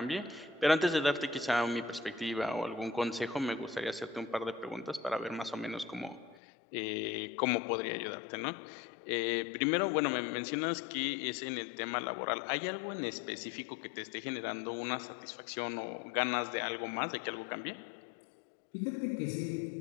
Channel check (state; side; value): drops out; right; at 6.4 s